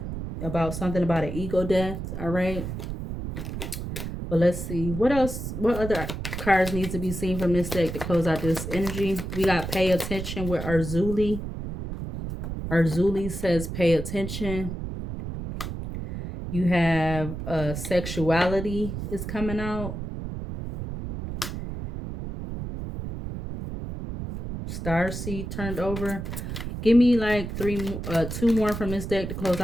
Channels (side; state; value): right; noise; rumble, 6 dB below the sound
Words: About something about an ego death. All right. But let's see. What else? What other cards need to be seen from this deck to close out this energy? We got Pay Attention with Arzuli. Arzuli says pay attention. You have Sexuality is coming out. Starseed turned over. Give me like 2 more from this deck to close